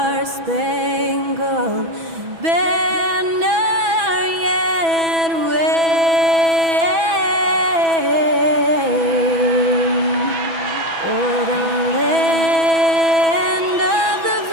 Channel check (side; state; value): left; late; 6.1 ms